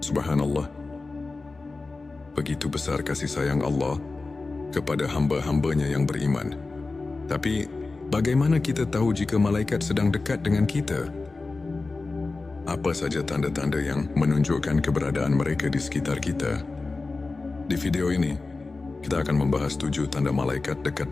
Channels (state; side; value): quieter; right; 3.7 dB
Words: Subhanallah. Begitu besar kasih sayang Allah kepada hamba-hambanya yang beriman. Tapi, bagaimana kita tahu jika malaikat sedang dekat dengan kita? Apa saja tanda-tanda yang menunjukkan keberadaan mereka di sekitar kita? Di video ini, kita akan membahas 7 tanda malaikat